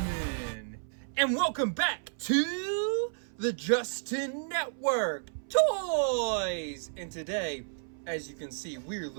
And welcome back to the Justin Network Toys. And today, as you can see, we're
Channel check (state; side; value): silent; left; 57 dB below the other